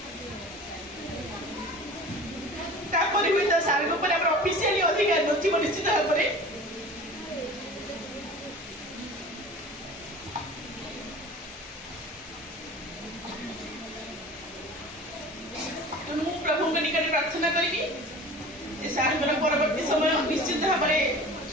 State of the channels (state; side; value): normal; both; correlation 0.40